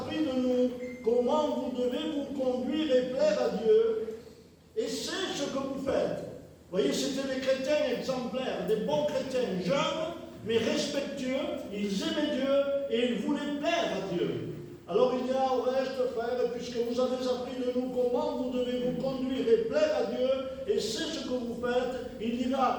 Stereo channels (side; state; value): both; identical; correlation 1.00